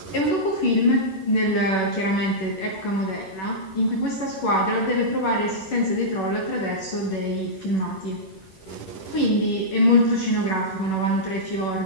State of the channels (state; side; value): late; right; 11 ms